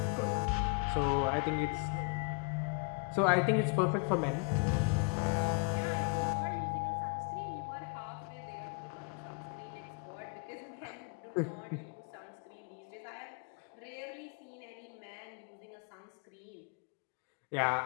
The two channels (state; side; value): quieter; right; 33.3 dB